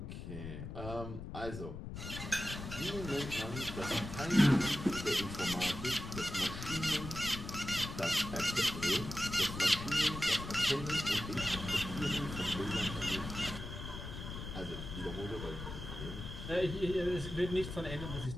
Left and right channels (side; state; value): left; noise; rumble, 8 dB below the sound